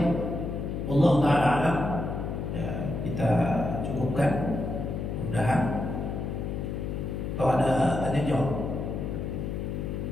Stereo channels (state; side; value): noise; left; hum, 3 dB below the sound